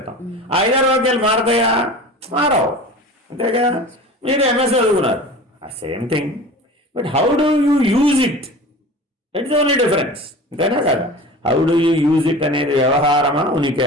5-6 వాక్యాలు మారతాయా? మారవు. అంతేగా. మీరు ఎంఎస్ చదువుకున్నారు, ఆ same thing. But how do you use it, it's only difference. అంతేనా కదా? How do you use it అనేది వ్యవహారమా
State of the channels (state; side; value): normal; both; correlation 0.37